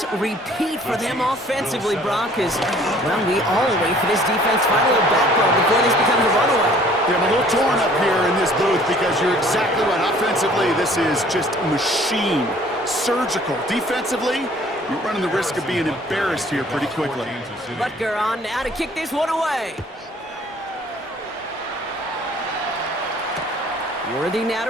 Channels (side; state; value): both; normal; correlation 0.55